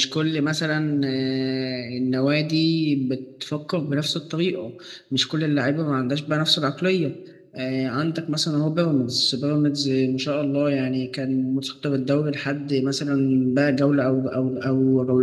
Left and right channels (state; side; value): identical; both; correlation 1.00